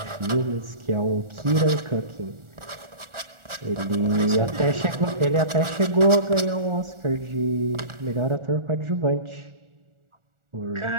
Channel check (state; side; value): late; left; 1.4 ms